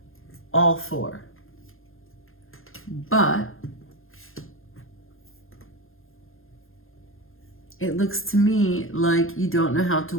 All 4. But it looks to me like you don't know how to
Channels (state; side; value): late; right; 0.60 ms